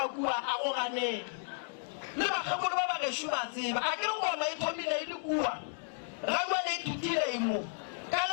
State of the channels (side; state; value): right; silent; digital silence